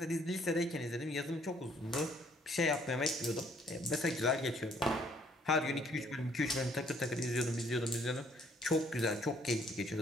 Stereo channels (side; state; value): both; normal; correlation 0.64